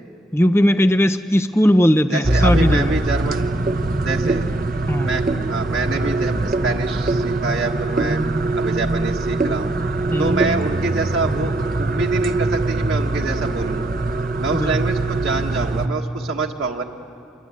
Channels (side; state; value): both; normal; correlation 0.74